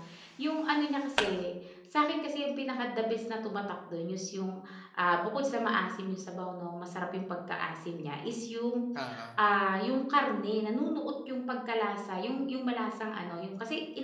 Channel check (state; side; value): identical; both; correlation 1.00